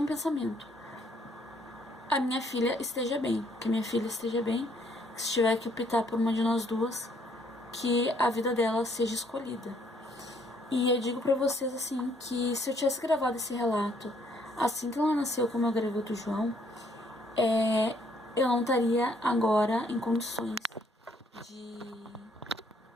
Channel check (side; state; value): both; normal; correlation 0.66